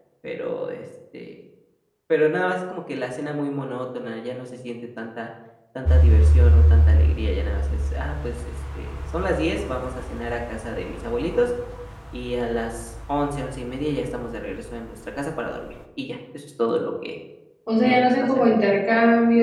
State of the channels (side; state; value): both; identical; correlation 1.00